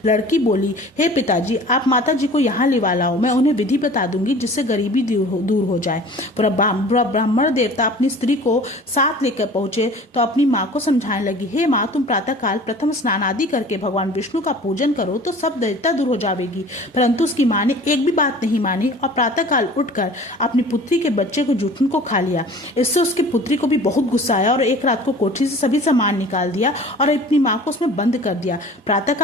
लड़की बोली, हे पिताजी, आप माता जी को यहाँ लिवा लाओ, मैं उन्हें विधि बता दूंगी जिससे गरीबी दूर हो जाए। ब्राह्मण देवता अपनी स्त्री को साथ लेकर पहुंचे तो अपनी माँ को समझाने लगी, हे माँ, तुम प्रातः काल प्रथम स्नान आदि करके भगवान विष्णु का पूजन करो तो सब दैत्यता दूर हो जाएगी। परंतु उसकी माँ ने एक भी बात नहीं मानी और प्रातः काल उठकर अपनी पुत्री के बच्चे को जूठन को खा लिया। इससे उसकी पुत्री को भी बहुत गुस्सा आया और एक रात को कोठरी से सभी सामान निकाल दिया और अपनी माँ को उसमें बंद कर दिया।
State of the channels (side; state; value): both; normal; correlation 0.44